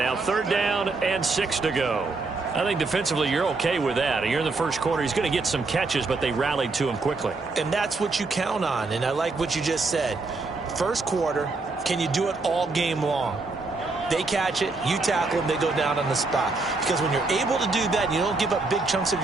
3rd down and 6 to go. I think defensively you're okay with that. You're in the first quarter. He's going to get some catches, but they rallied to him quickly. And that's what you count on. And I like what you just said. First quarter, can you do it all game long? They catch it, you tackle them, they go down on the spot. Because when you're able to do that and you don't give up big chunks of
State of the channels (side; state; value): left; quieter; 3.7 dB